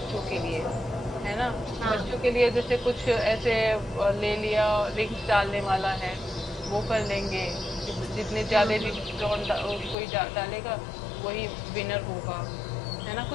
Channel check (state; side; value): drops out; right; at 10.0 s